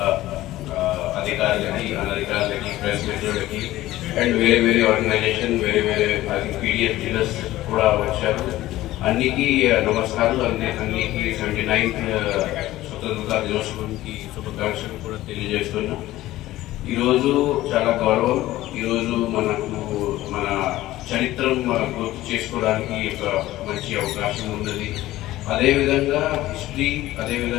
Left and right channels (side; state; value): right; quieter; 16.0 dB